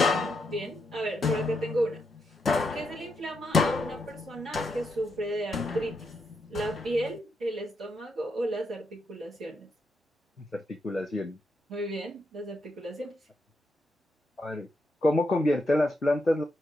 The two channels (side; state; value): both; normal; correlation 0.81